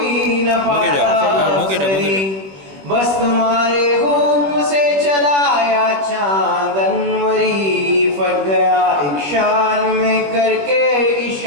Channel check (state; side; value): late; left; 21 ms